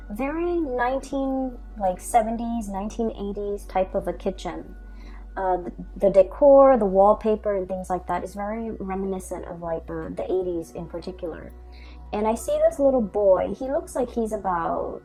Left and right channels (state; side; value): identical; both; correlation 1.00